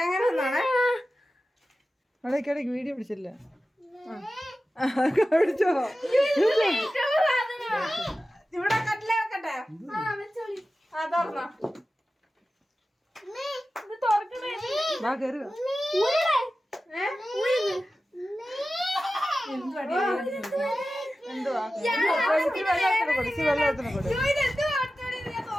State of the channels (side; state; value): both; normal; correlation 0.94